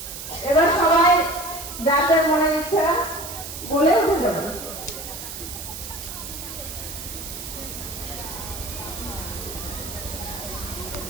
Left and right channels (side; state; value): right; noise; hiss, 9 dB below the sound